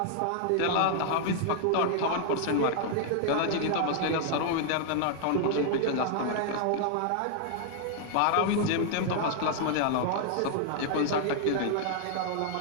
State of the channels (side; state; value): both; different; correlation 0.00